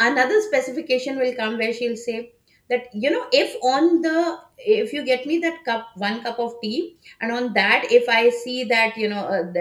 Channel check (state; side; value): identical; both; correlation 1.00